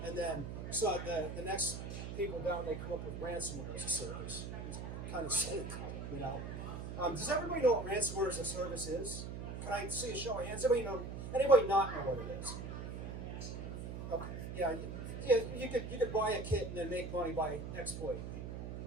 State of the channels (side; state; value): right; noise; hum, 6 dB below the sound